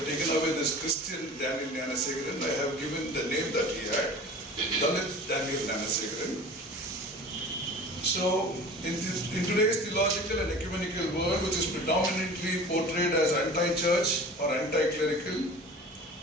taken away this Christian Daniel GNANASEKARAN. I have given the name that he had, Dalit Daniel GNANASEKARAN. So, in today's theological and ecumenical world, which is predominantly portrayed as anti-church or anti-clerical,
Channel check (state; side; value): normal; both; correlation 0.40